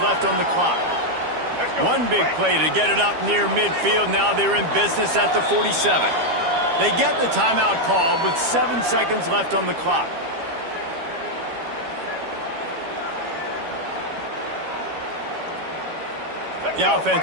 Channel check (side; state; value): left; late; 12 ms